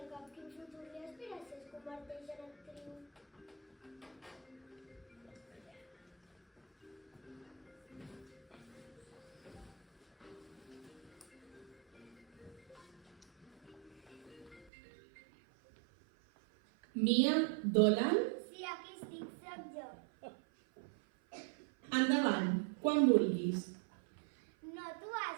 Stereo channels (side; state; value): left; drops out; at 14.7 s